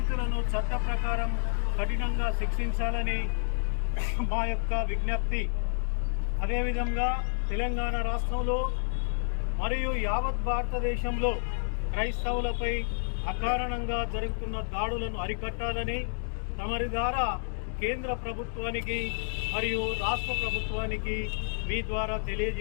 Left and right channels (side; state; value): right; silent; digital silence